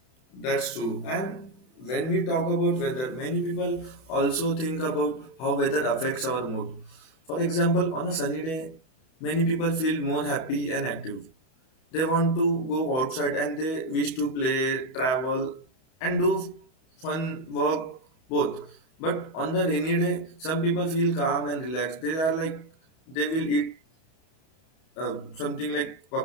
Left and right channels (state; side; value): late; right; 31 ms